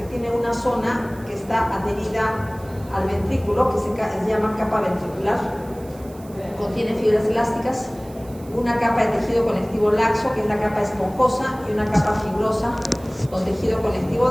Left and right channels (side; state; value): right; noise; hiss, 24 dB below the sound